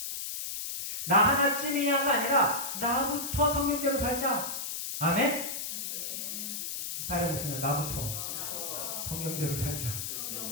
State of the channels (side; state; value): left; noise; hiss, 4 dB below the sound